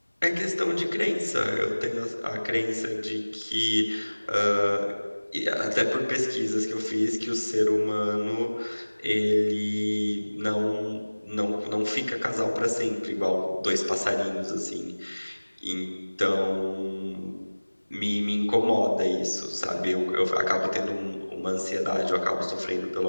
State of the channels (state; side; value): inverted; both; correlation -1.00